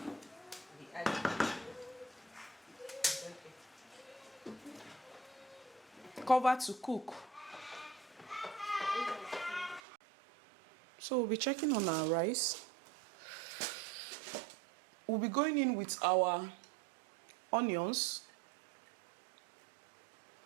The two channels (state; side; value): drops out; left; at 9.8 s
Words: Cover to cook. So we'll be checking on our rice. We'll be going in with our onions.